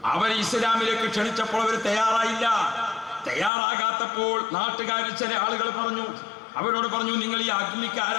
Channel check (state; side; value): drops out; right; at 3.5 s